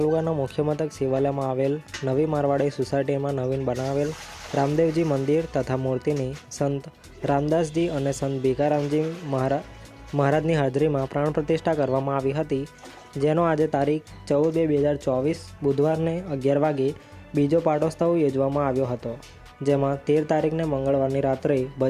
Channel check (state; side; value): identical; both; correlation 1.00